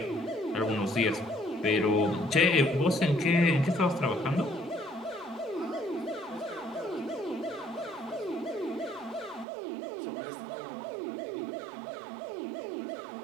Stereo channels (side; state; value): left; drops out; at 9.5 s